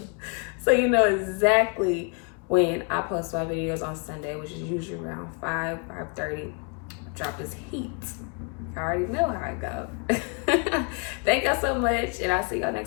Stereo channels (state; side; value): quieter; right; 35.7 dB